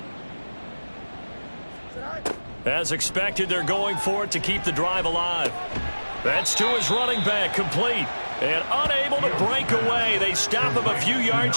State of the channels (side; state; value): both; inverted; correlation -1.00